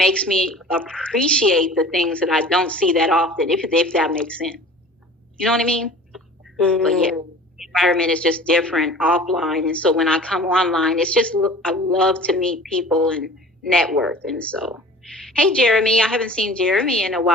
me appreciate the things that I don't see that often, if that makes sense. You know what I mean? Mm-hmm. But yeah. Environment is just different offline, and so when I come online, it's just, I love to meet people and network. And so, hey Jeremy, I haven't seen Jeremy in a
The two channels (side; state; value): both; normal; correlation 0.43